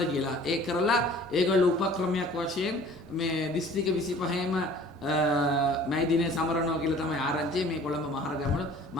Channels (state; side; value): normal; both; correlation 0.49